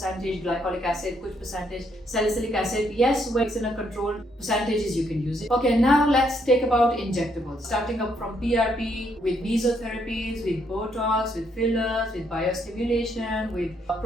glycolic acid, कुछ percentage salicylic acid. Yes, when it's in a controlled percentages you can use it. Okay, now let's take about injectables. Starting up from PRP, with mesotherapies, with Botox, with fillers, with biostimulation, with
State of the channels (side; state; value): both; normal; correlation 0.73